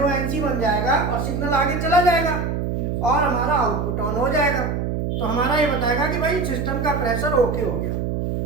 बन जाएगा और सिग्नल आगे चला जाएगा और हमारा आउटपुट ऑन हो जाएगा। तो हमारा ये बताएगा कि भाई सिस्टम का प्रेशर ओके हो गया।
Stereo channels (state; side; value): noise; right; hum, 1 dB below the sound